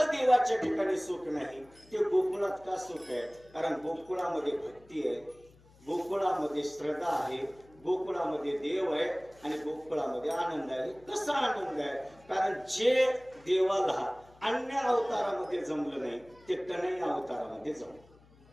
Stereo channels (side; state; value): left; noise; hum, 27 dB below the sound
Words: देवाच्या ठिकाणी सुख नाही, ते गोकुळात का सुख आहे? कारण गोकुळामध्ये भक्ती आहे, गोकुळामध्ये श्रद्धा आहे, गोकुळामध्ये देव आहे आणि गोकुळामध्ये आनंद आहे. कसा आनंद आहे? कारण जे देवाला अन्य अवतारामध्ये जमलं नाही ते कन्हैया अवतारामध्ये जमलं.